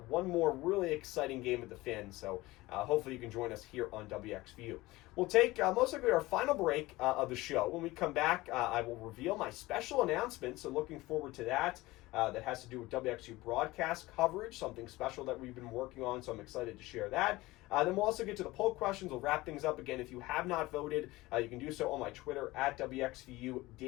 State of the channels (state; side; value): quieter; right; 19.6 dB